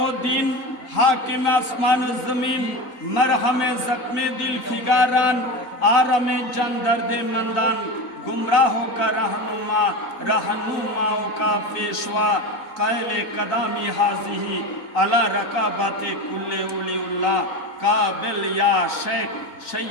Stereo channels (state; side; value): late; right; 3.9 ms